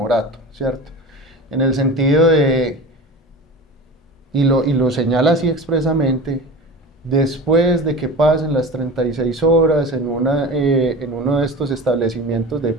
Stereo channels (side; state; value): both; normal; correlation 0.32